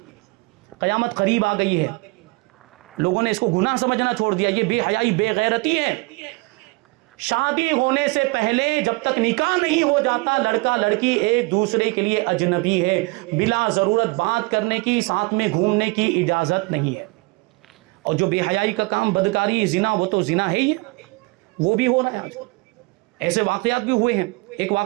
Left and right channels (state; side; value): quieter; left; 26.1 dB